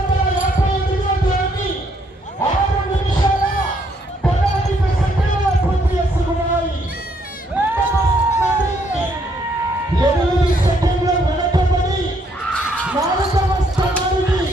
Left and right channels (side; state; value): both; normal; correlation 0.70